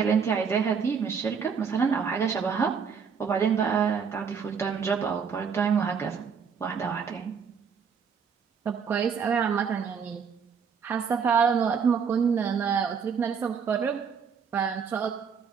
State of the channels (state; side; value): quieter; left; 6.4 dB